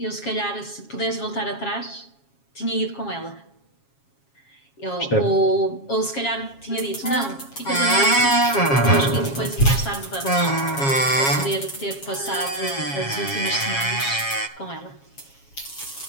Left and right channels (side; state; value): right; late; 7.3 ms